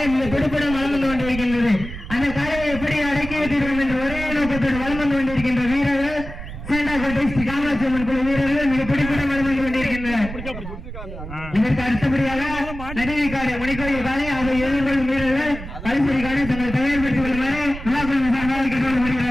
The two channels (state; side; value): noise; right; rumble, 10 dB below the sound